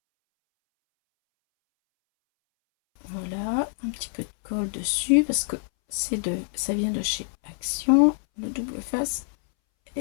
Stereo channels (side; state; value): right; silent; 61 dB below the other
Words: Voilà, un petit peu de colle dessus parce que ça vient de chez Action, le double face,